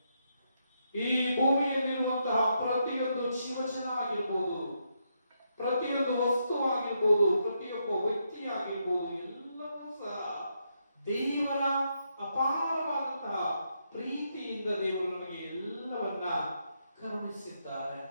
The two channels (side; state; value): both; inverted; correlation -0.80